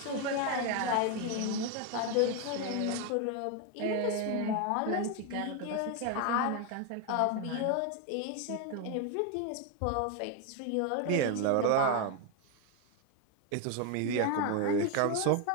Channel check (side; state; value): both; different; correlation 0.01